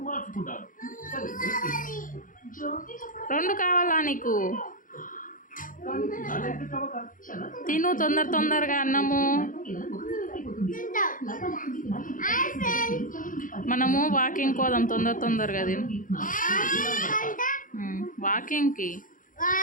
రెండు కావాలా నీకు? తిను తొందరగా అన్నము. మనము వాకింగ్ పోదాం తొందరగా తిను. వాకింగ్కి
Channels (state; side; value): late; right; 0.39 ms